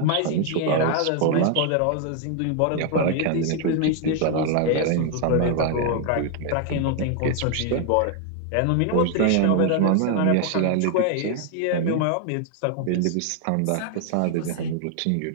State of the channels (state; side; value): different; both; correlation 0.00